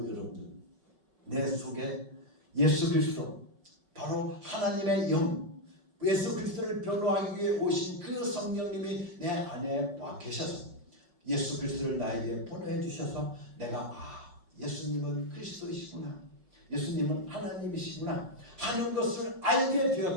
여러분들, 내 속에 예수 그리스도 바로 하나님의 영 예수 그리스도를 변호하기 위해 오신 그 성령님이 내 안에 와 계셔서 예수 그리스도를 나에게 보내해 주셔서 내가 예수님은 그리스도이시구나, 예수님은 하나님이시구나 하는 것을 알게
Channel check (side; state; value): left; late; 5.4 ms